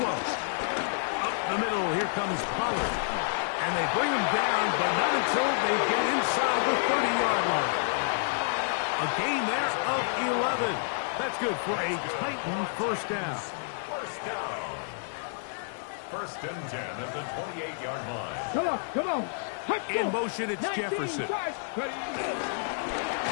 Up the middle, here comes Pollard. And they bring him down, but not until they get inside the 30-yard line. A gain there of 11. That's good for a Titan 1st down. 1st down. 1st and 10 at the 28-yard line. Come on. In motion, it's Jefferson. Oh, he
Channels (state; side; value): silent; right; 58 dB below the other